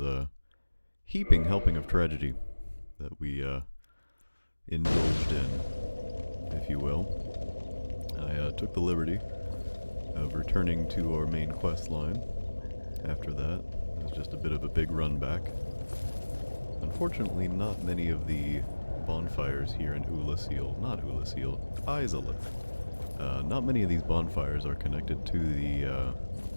heaping helping of tragedy that we indulged in, if you will. I took the liberty of returning to our main quest line after that. It was just a bit of a big run back. Unfortunately, not many of the bonfires here in Izalith. Not many of these bonfires are connected to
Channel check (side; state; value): both; inverted; correlation -1.00